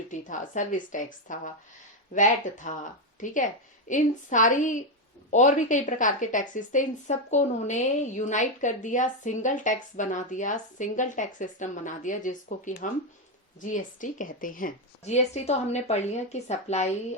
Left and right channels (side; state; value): both; normal; correlation 0.06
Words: था, सर्विस टैक्स था, वैट था। ठीक है, इन सारी और भी कई प्रकार के टैक्सेस थे, इन सबको उन्होंने यूनाइट कर दिया, सिंगल टैक्स बना दिया, सिंगल टैक्स सिस्टम बना दिया, जिसको कि हम जीएसटी कहते हैं। जीएसटी तो हमने पढ़ लिया कि supply